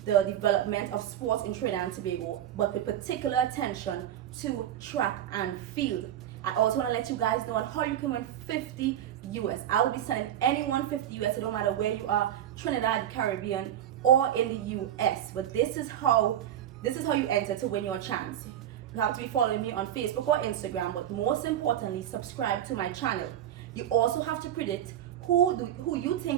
the development of sports in Trinidad and Tobago, but with particular attention to track and field. I also want to let you guys know on how you can win 50 US. I will be sending anyone 50 US. It don't matter where you are, Trinidad, Caribbean, or in the US. But this is how you enter to win your chance. You have to be following me on Facebook or Instagram, but most importantly, subscribe to my channel. You also have to predict who you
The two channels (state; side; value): quieter; left; 11.1 dB